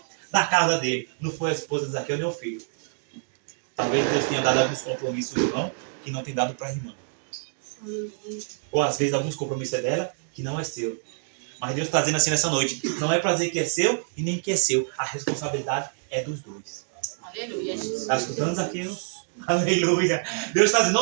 da casa dele. Não foi a esposa de Zaqueu nem o filho. Talvez Deus tenha dado alguns compromissos ao irmão que não tem dado para a irmã. Ou às vezes alguns compromissos é dela que não é seu. Mas Deus está dizendo assim nessa noite: não é para dizer que é seu e nem que é seu. A responsabilidade é dos dois. Aleluia. Está escutando, Zaqueu? Aleluia. Deus está dizendo,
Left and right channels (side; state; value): left; silent; digital silence